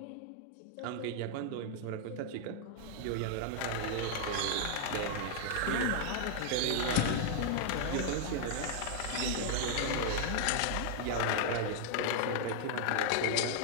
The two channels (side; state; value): both; different; correlation -0.01